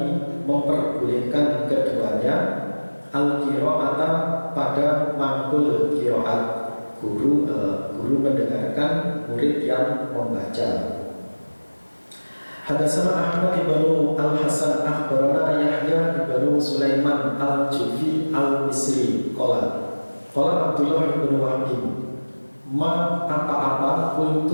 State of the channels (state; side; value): inverted; both; correlation -1.00